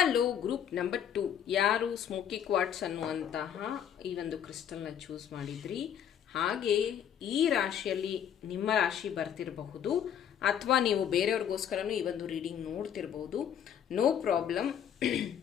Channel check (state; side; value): quieter; right; 9.0 dB